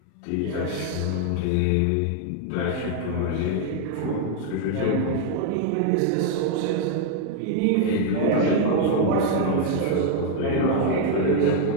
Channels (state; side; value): different; both; correlation 0.00